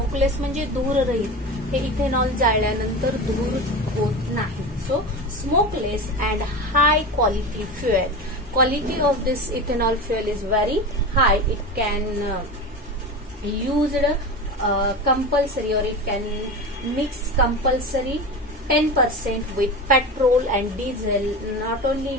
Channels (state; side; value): normal; both; correlation 0.27